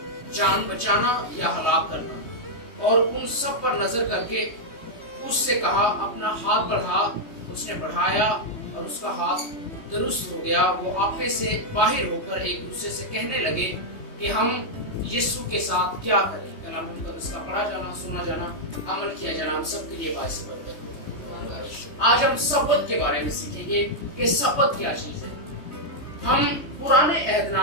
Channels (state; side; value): late; right; 3.2 ms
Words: जान बचाना या हलाक करना? और उन सब पर नजर करके उससे कहा, अपना हाथ बढ़ा। उसने बढ़ाया और उसका हाथ दुरुस्त हो गया। वो आपे से बाहर होकर एक दूसरे से कहने लगे कि हम यीशु के साथ क्या करें। कलाम मुकद्दस का पढ़ा जाना, सुना जाना, अमल किया जाना हम सबके लिए बाइस बरकत हो। आज हम सब्बत के बारे में सीखेंगे कि सब्बत क्या चीज है। हम पुराने